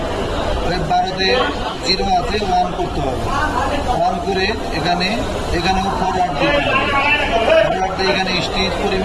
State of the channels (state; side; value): identical; both; correlation 1.00